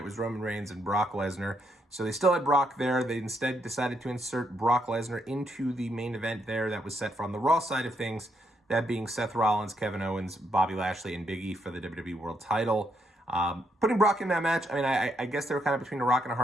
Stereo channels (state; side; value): normal; both; correlation 0.76